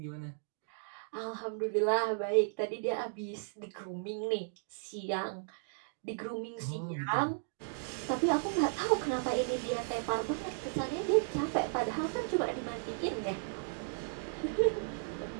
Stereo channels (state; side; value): silent; left; digital silence